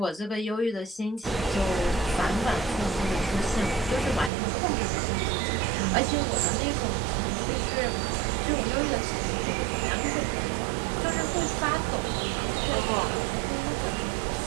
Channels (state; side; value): drops out; left; at 4.3 s